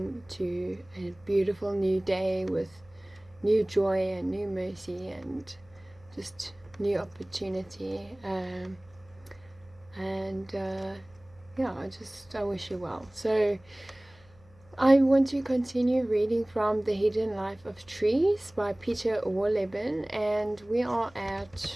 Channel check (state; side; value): noise; left; hum, 28 dB below the sound